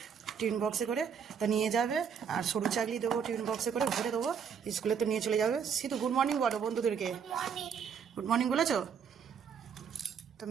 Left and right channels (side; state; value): left; quieter; 7.1 dB